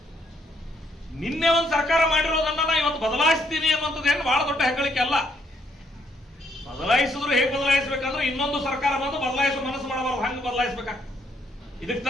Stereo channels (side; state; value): both; normal; correlation 0.71